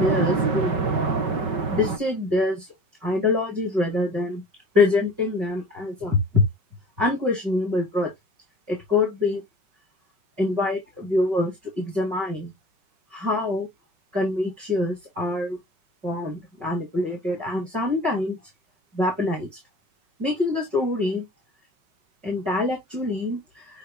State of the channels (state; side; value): late; left; 5.3 ms